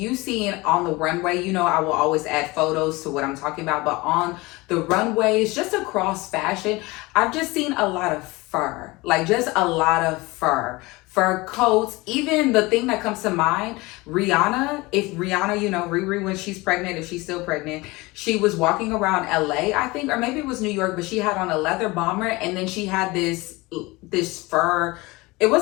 see it on the runway, you know, I will always add photos to what I'm talking about, but on the runways, just across fashion, I've just seen a lot of fur, like just a lot of fur coats. Even the thing that comes to mind, Rihanna, if Rihanna, you know, Riri, when she's pregnant, if she's still pregnant, she was walking around LA, I think, or maybe it was New York, but she had on a leather bomber, and then she had this fur. It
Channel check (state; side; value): quieter; right; 22.6 dB